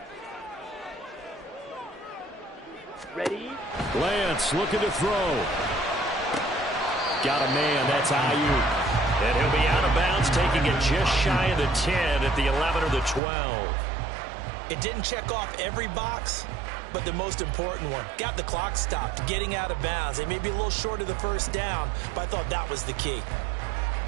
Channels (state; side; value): drops out; left; at 13.2 s